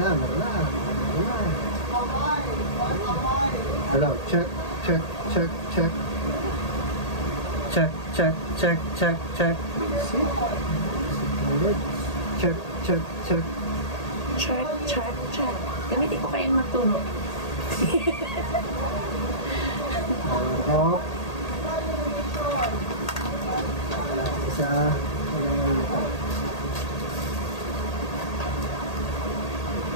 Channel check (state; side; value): late; right; 1.8 ms